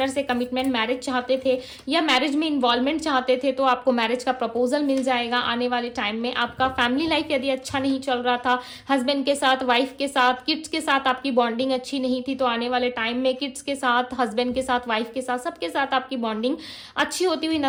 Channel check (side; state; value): both; identical; correlation 1.00